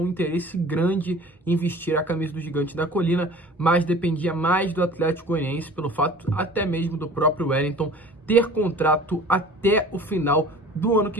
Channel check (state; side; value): normal; both; correlation 0.44